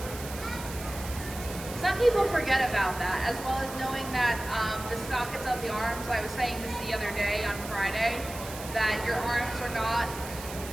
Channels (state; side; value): noise; right; hiss, 12 dB below the sound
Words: Some people forget about that, as well as knowing that the sockets of the arms, I was saying this the other day on Friday, that your arms are not